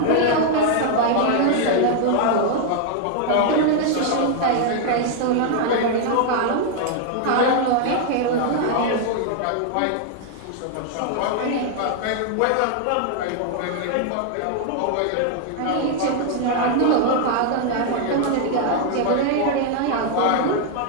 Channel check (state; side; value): different; both; correlation 0.00